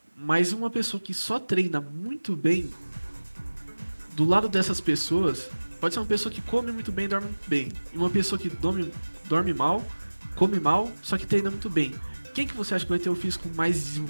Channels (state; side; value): inverted; both; correlation -1.00